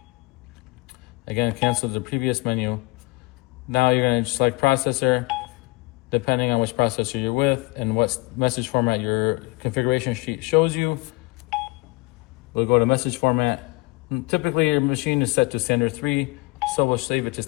Again, cancel the previous menu. Now you're going to select processor, depending on which processor you're with and what message format your configuration sheet shows you. We'll go to message format. Typically your machine is set to standard 3, so we'll save it to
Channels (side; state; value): right; quieter; 25.1 dB